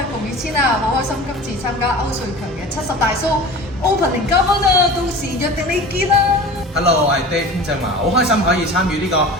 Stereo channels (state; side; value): normal; both; correlation 0.37